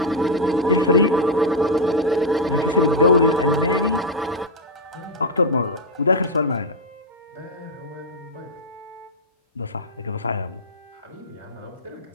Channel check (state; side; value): normal; both; correlation 0.00